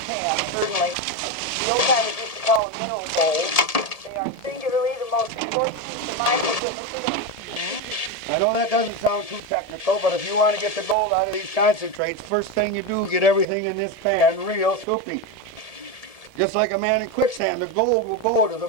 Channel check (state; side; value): late; right; 1.7 ms